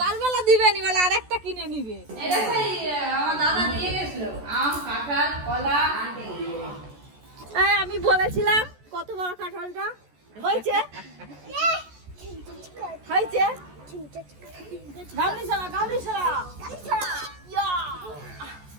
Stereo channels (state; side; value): late; left; 14 ms